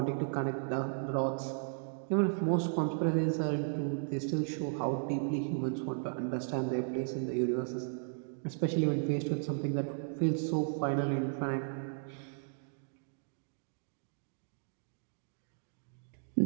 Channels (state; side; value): silent; left; digital silence